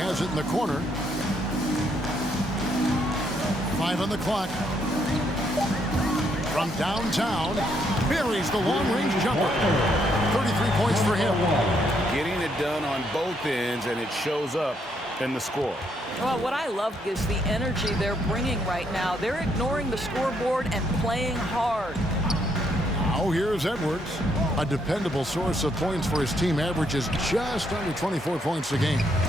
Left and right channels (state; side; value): normal; both; correlation 0.73